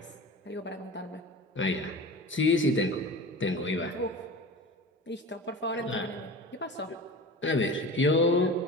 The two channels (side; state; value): both; normal; correlation 0.34